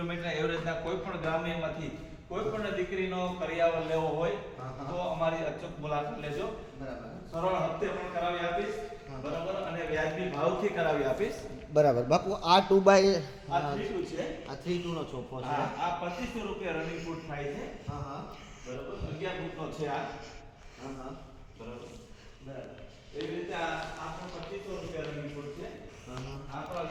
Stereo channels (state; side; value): identical; both; correlation 1.00